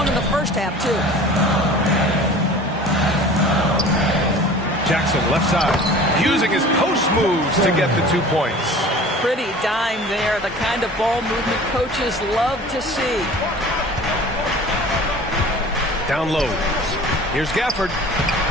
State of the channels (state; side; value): normal; both; correlation 0.43